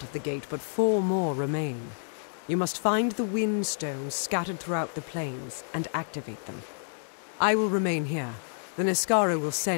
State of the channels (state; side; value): silent; right; 59 dB below the other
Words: of the gate, but 4 more remain. You must find the wind stones scattered throughout the plains and activate them. I will remain here. The Niskara will